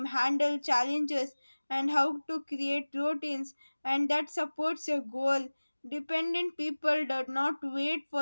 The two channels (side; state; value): both; inverted; correlation -1.00